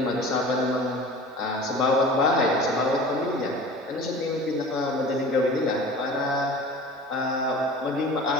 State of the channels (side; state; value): both; normal; correlation 0.40